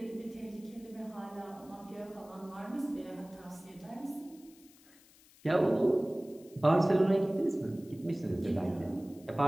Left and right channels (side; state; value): left; noise; hiss, 26 dB below the sound